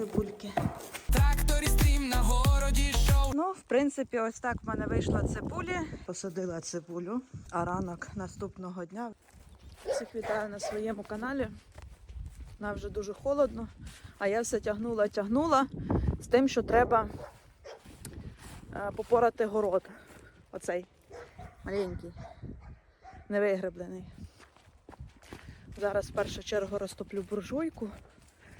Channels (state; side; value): identical; both; correlation 1.00